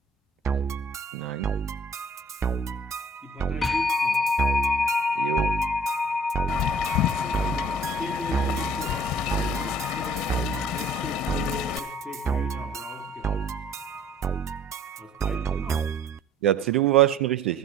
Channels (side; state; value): both; normal; correlation 0.54